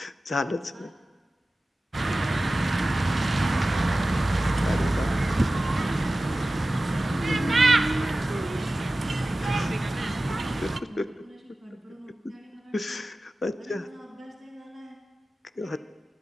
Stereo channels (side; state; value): both; normal; correlation 0.96